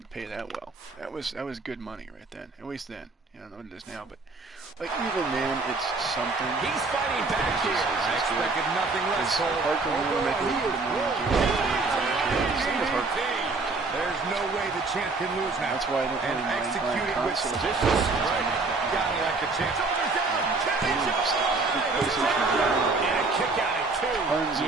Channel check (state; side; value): quieter; left; 3.8 dB